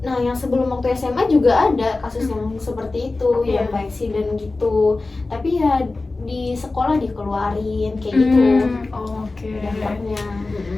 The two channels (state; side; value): quieter; right; 3.4 dB